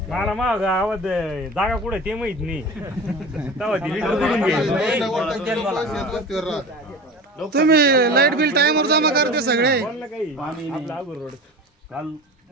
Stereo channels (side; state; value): both; normal; correlation 0.34